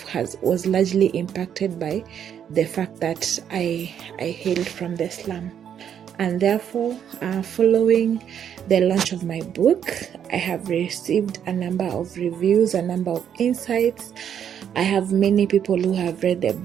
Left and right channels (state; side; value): quieter; left; 8.8 dB